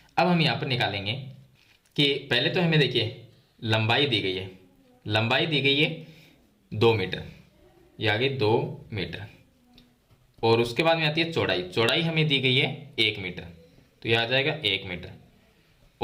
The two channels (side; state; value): both; identical; correlation 1.00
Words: अब हम यहाँ पर निकालेंगे कि पहले तो हमें देखिए लंबाई दी गई है, लंबाई दी गई है 2 मीटर, ये आगे 2 मीटर, और उसके बाद में आती है चौड़ाई, चौड़ाई हमें दी गई है 1 मीटर, तो यह आ जाएगा 1 मीटर,